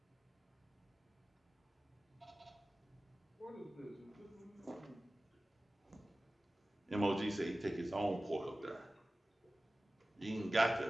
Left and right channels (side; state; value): both; normal; correlation 0.97